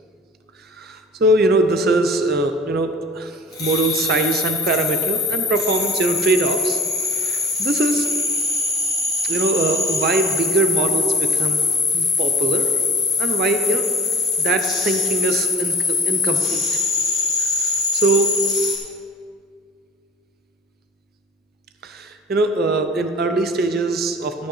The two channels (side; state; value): both; normal; correlation 0.43